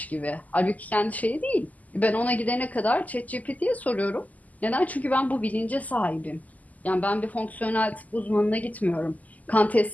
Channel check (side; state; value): right; late; 0.077 ms